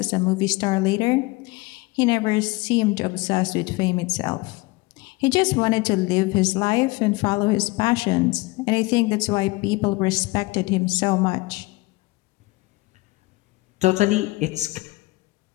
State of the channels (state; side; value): quieter; right; 22.7 dB